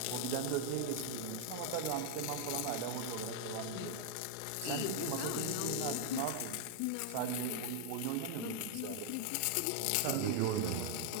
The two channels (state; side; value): different; both; correlation 0.00